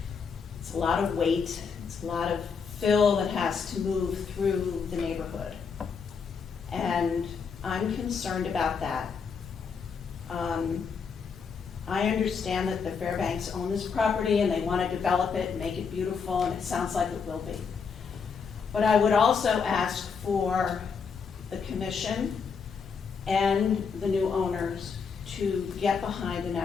it's a lot of weight, it's a lot of fill that has to move through the neighborhood. And I'm concerned about that. I understand that the Fairbanks own this property and they want to develop it and make it beautiful, and it sounds like it will be. But I would also ask for the commission and the new owners to get behind an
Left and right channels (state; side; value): quieter; right; 5.8 dB